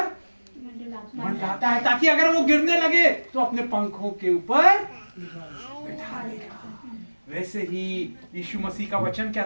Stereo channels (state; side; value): inverted; both; correlation -1.00